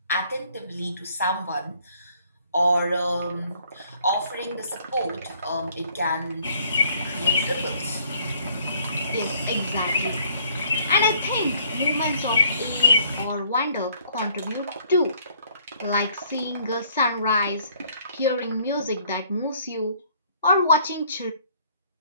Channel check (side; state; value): both; inverted; correlation -0.62